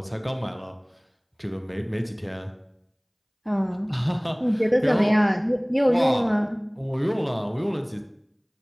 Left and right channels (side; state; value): both; identical; correlation 1.00